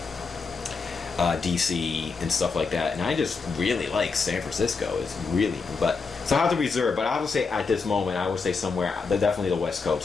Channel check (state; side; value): quieter; right; 4.7 dB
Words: DC and stuff like that, and I just really like San Francisco. It's really, but so I have to reserve. But I would say at this moment, I would say somewhere, definitely the West